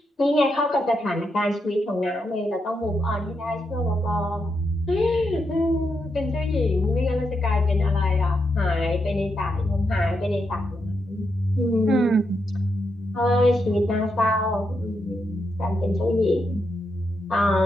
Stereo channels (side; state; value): both; normal; correlation 0.83